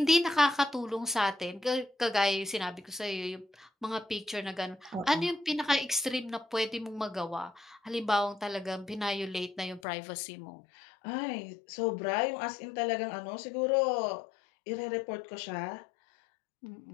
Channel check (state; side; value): drops out; right; at 9.8 s